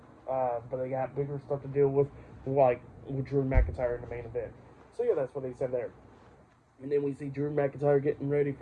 But they got bigger stuff to deal with, like with Drew McIntyre in the main event. So yeah, that's what they said there. And then we see Drew McIntyre getting ready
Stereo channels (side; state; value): both; identical; correlation 1.00